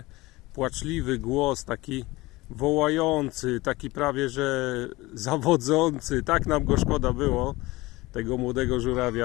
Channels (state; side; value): quieter; right; 20.5 dB